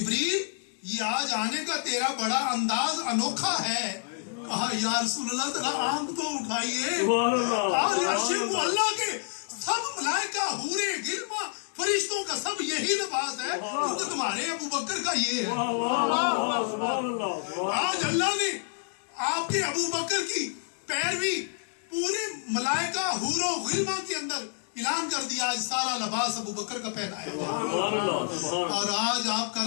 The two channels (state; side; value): silent; right; digital silence